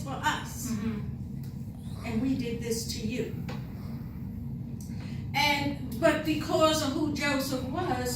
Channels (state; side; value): identical; both; correlation 1.00